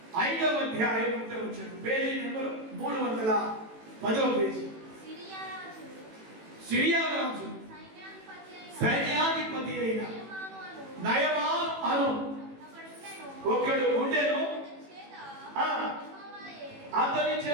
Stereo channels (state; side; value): late; left; 18 ms